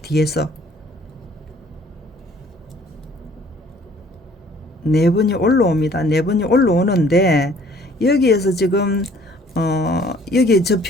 뒤에서 4번이 올라옵니다. 4번이 올라오는데 여기에서 지금 여기에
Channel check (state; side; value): normal; both; correlation 0.57